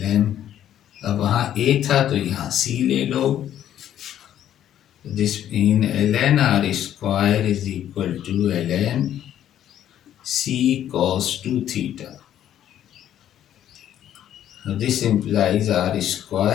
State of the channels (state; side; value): quieter; right; 11.1 dB